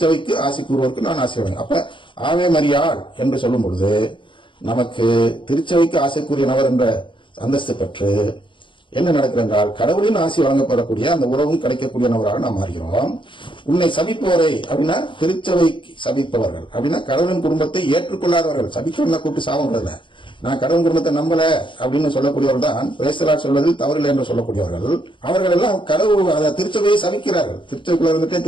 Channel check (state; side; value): late; right; 0.24 ms